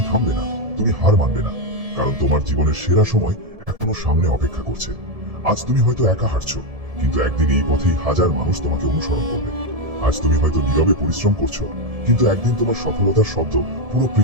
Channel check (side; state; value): left; late; 1.7 ms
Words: থামবে না, তুমি হার মানবে না। কারণ তোমার জীবনের সেরা সময় এখনো সামনে অপেক্ষা করছে। আজ তুমি হয়তো একা হাঁটছো, কিন্তু একদিন এই পথেই হাজার মানুষ তোমাকে অনুসরণ করবে। আজ তুমি হয়তো নীরবে পরিশ্রম করছো, কিন্তু একদিন তোমার সফলতার শব্দ পুরো